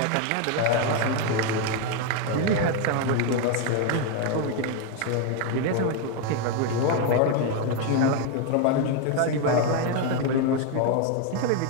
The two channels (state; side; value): different; both; correlation 0.01